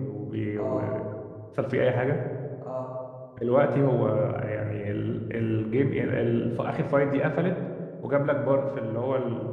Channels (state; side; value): identical; both; correlation 1.00